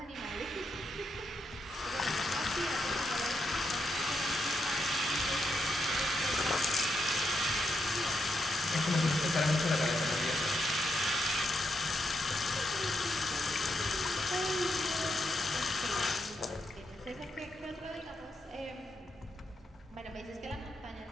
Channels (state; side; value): normal; both; correlation 0.82